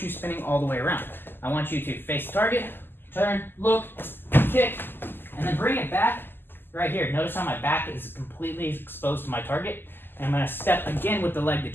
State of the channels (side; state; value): right; late; 0.097 ms